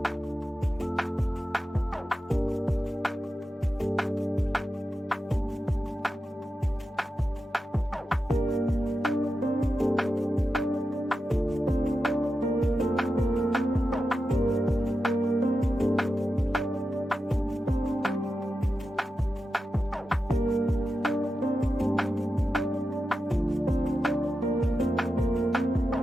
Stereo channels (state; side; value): normal; both; correlation 0.90